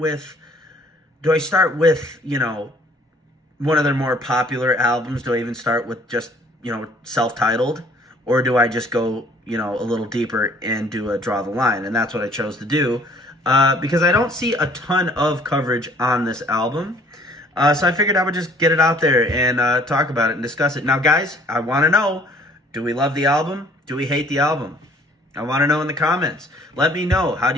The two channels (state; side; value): normal; both; correlation 0.56